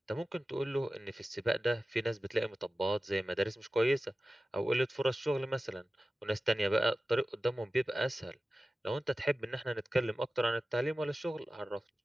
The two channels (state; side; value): normal; both; correlation 0.95